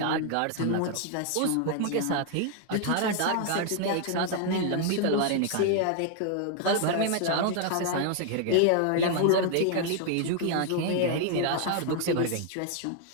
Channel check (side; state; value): both; different; correlation 0.00